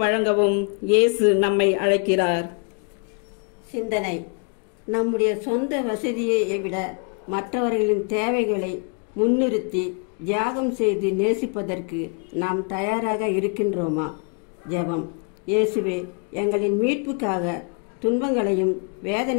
வழங்கவும் இயேசு நம்மை அழைக்கிறார். சிந்தனை. நம்முடைய சொந்த வசதியை விட மற்றவர்களின் தேவைகளை முன்னிறுத்தி தியாகம் செய்து நேசிப்பதற்கு நாம் தயாராக இருக்கின்றோமா? ஜெபம். இயேசுவே, எங்களின் மீட்புக்காக துன்பங்களையும்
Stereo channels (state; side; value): quieter; right; 37.9 dB